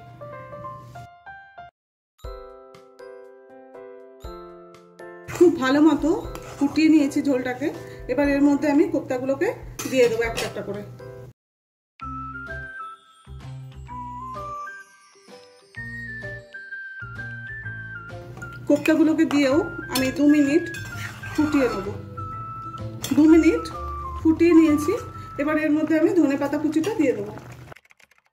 খুব ভালো মতো ফুটিয়ে নিয়েছি ঝোলটাকে। এবার এর মধ্যে আমি কোপ্তাগুলোকে দিয়ে দেবো একটা একটা করে। কোপ্তাগুলোকে দিয়েও আমি 2 মিনিট ফুটিয়ে নেব। 2 মিনিট ফুটিয়ে নিয়েছি। এবার এর মধ্যে আমি ধনেপাতা কুচিটা দিয়ে দেবো।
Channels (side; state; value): both; identical; correlation 1.00